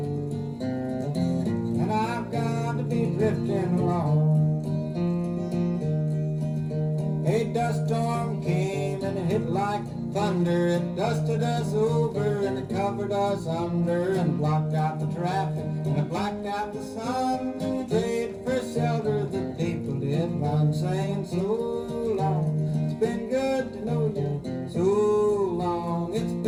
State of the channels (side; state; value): both; identical; correlation 1.00